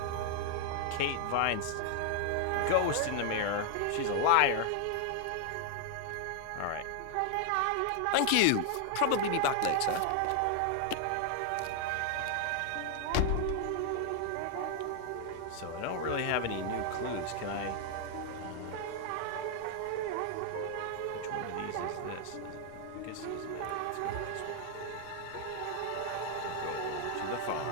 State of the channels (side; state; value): both; different; correlation 0.00